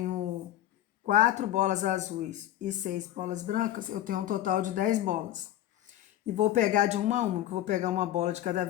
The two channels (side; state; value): right; quieter; 13.0 dB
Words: 4 bolas azuis e 6 bolas brancas, eu tenho um total de 10 bolas. E vou pegar de uma a uma, que eu vou pegar uma bola de cada